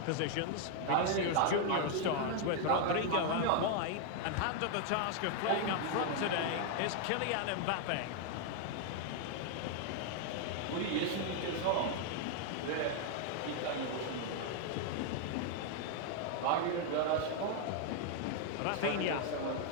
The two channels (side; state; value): both; different; correlation 0.00